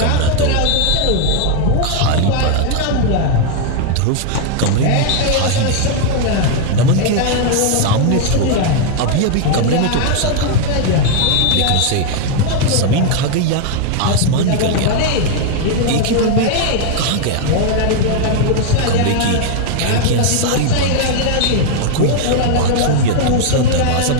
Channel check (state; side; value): different; both; correlation 0.01